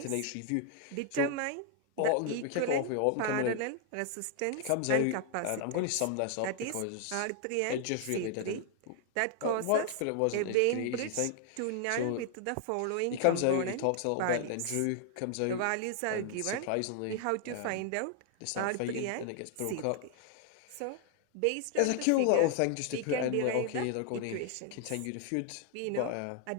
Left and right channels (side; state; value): both; different; correlation 0.00